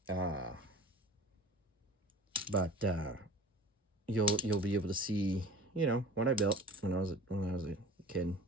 But you'll be able to see, you know, what I built when I was a kid.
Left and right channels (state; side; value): normal; both; correlation 0.41